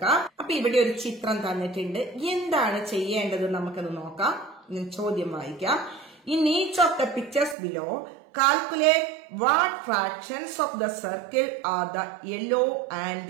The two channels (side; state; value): left; drops out; at 7.6 s